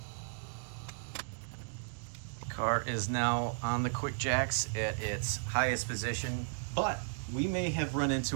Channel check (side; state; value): left; silent; digital silence